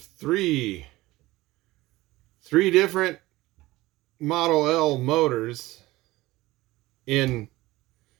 different Model L motors in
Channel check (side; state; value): left; quieter; 18.7 dB